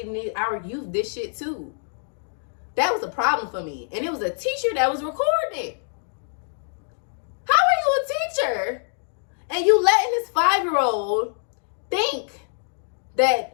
our youth this shit too. That was a problem for me. And it was a teacher that was recording it. How are you a teacher and you letting this 5-year-old think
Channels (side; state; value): right; silent; digital silence